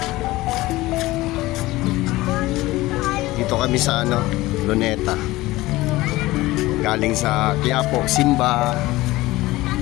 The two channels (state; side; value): quieter; right; 18.6 dB